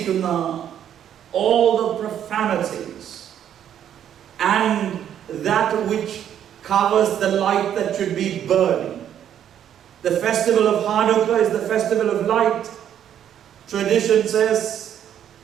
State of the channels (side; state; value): left; quieter; 9.9 dB